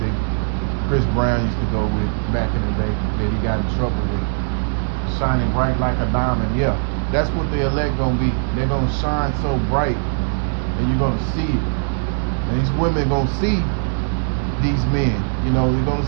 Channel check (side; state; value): left; silent; 61 dB below the other